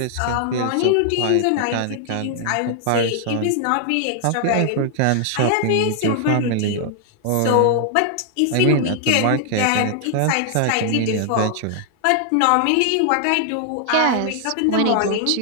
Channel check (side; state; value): both; different; correlation 0.00